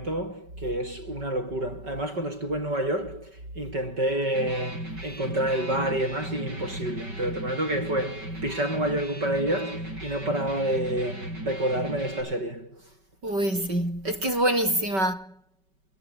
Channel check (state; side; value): late; left; 5.2 ms